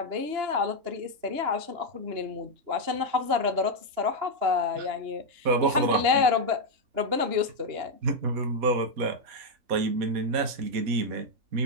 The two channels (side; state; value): left; late; 2.9 ms